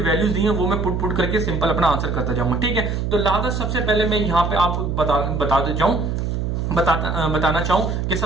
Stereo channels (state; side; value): noise; right; hum, 1 dB below the sound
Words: वैल्यूज दी हैं वो मैं पुट करके सिंपल अपना आंसर करता जाऊंगा। ठीक है, तो लिहाजा सबसे पहले मैं यहाँ पे आपको बताना चाहूं कि